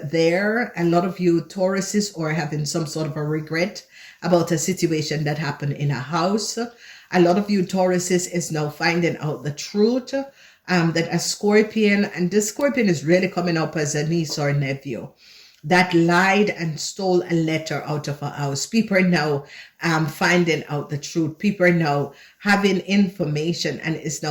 A lot of you Tauruses are having some sort of a regret about a situation that happened in a house. A lot of you Tauruses is now finding out the truth that a Scorpion, and this Scorpion is really coming up as a niece or nephew, that lied and stole a letter out of a house. People are now finding out the truth. People are now having information and is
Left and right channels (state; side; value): identical; both; correlation 1.00